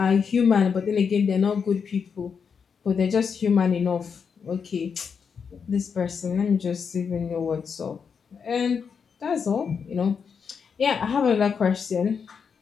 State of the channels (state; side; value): quieter; right; 6.3 dB